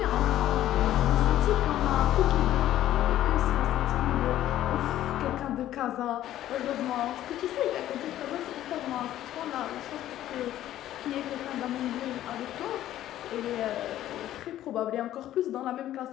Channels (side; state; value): right; quieter; 12.9 dB